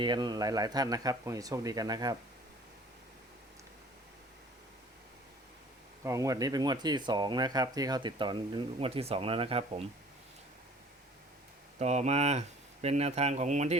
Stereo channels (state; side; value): normal; both; correlation 0.50